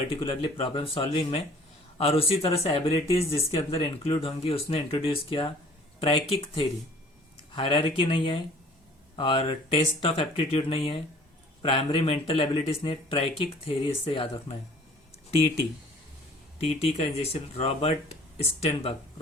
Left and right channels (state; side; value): normal; both; correlation 0.52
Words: प्रॉब्लम सॉल्विंग में, और उसी तरह से एबिलिटीज जिसके अंदर इंक्लूड होंगी उसने इंट्रोड्यूस किया ट्रैकिक थ्योरी। हायरार्की नहीं है और टेस्ट ऑफ एप्टीट्यूड नहीं है, प्राइमरी मेंटल एबिलिटीज ने, ट्रैकिक थ्योरी इससे याद रखना है। टी का इंजेक्शन, रॉबर्ट स्टेनबर्ग,